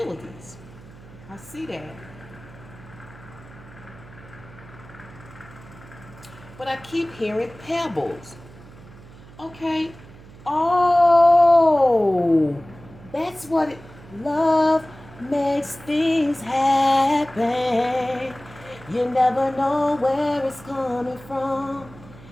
I see that. But I keep hearing pebbles. Okay. Oh, that's what it, love makes things happen. You never know where it's coming from.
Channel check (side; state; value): right; noise; hum, 20 dB below the sound